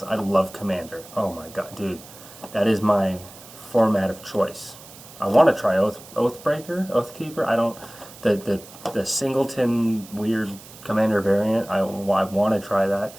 I love Commander. Oh my god, dude, that is my format of choice. I want to try Oathbreaker, Oathkeeper. I don't the singleton weird Commander variant. I want to try that.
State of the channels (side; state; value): right; noise; hiss, 19 dB below the sound